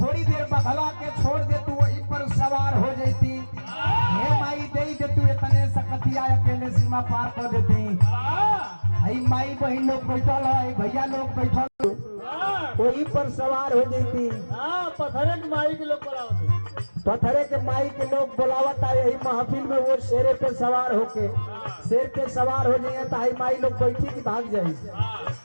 देर बघला के छोड़ दे तू वहीं पर सवार हो जाती हे माई दे दे तू इतने सकतिया अकेले सीमा पार कर देती आई माई बहन लोग बैठल है भैया लोग बैठल वहीं पर सवार हो जाती पथरे के माई के लोग बुलावत पथरे के माई के लोग बुलावत है यही महफिल में वो शेरे पे सवार होके शेर पे सवार हो जाइए तो आई माई लोग बैठी की भाग जाए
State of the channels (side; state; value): both; inverted; correlation -1.00